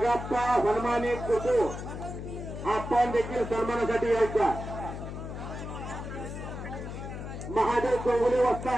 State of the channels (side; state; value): left; noise; hum, 8 dB below the sound